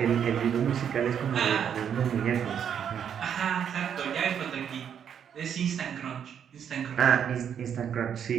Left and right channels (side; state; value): left; quieter; 8.4 dB